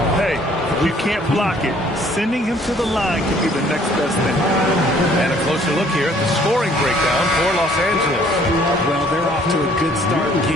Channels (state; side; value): normal; both; correlation 0.59